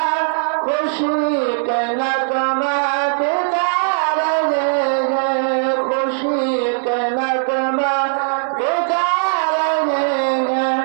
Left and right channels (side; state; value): left; silent; digital silence